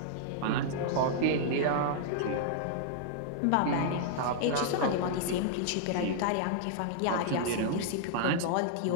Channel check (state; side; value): different; both; correlation -0.01